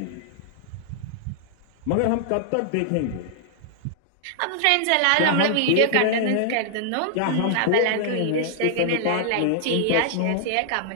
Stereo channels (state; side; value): different; both; correlation -0.01